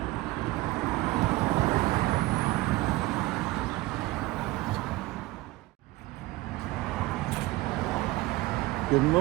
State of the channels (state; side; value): quieter; left; 19.1 dB